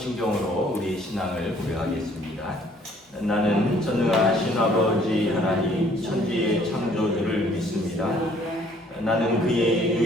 우리 신앙을 고백하겠습니다. 나는 전능하신 아버지 하나님 천지의 창조주를 믿습니다. 나는 그의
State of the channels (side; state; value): both; normal; correlation 0.60